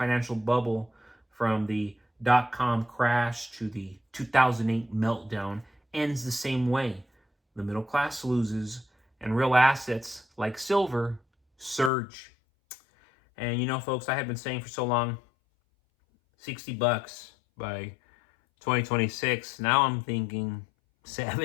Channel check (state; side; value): drops out; right; at 11.9 s